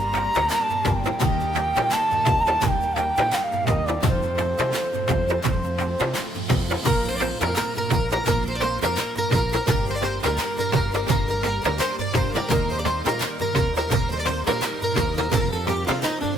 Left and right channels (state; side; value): normal; both; correlation 0.75